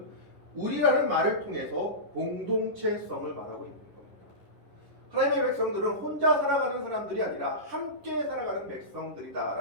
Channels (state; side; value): late; left; 10 ms